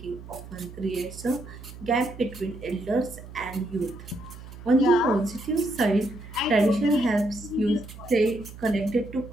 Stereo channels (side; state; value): right; noise; hum, 15 dB below the sound